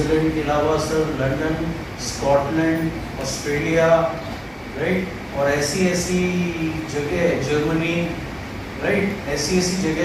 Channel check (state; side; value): identical; both; correlation 1.00